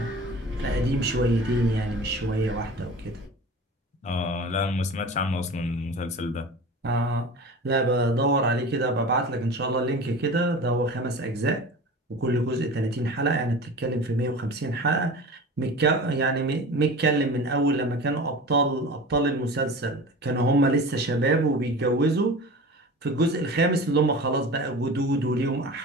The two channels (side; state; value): both; normal; correlation 0.35